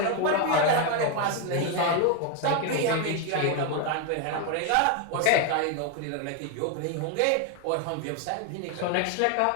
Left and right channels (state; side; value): different; both; correlation 0.01